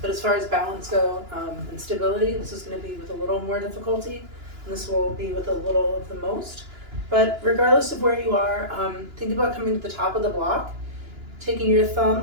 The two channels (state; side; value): late; left; 2.9 ms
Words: But as far as balance go and stability, this is going to be with a little more difficulty, and this will be with a little of the most. But regardless of where you are, think about coming to the top of the block, taking your